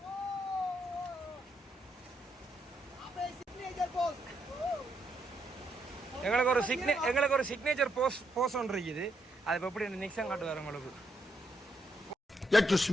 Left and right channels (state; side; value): normal; both; correlation 0.77